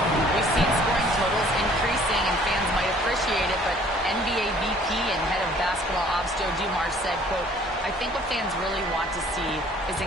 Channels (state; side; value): normal; both; correlation 0.56